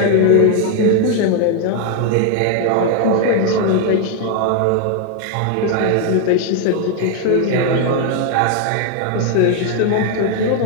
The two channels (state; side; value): different; both; correlation 0.00